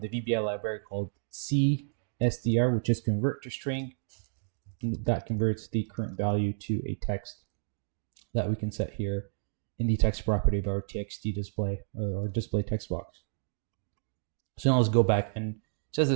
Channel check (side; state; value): left; silent; digital silence